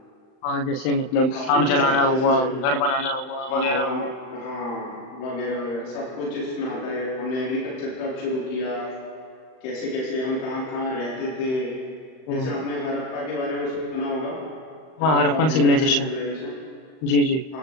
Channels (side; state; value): right; late; 39 ms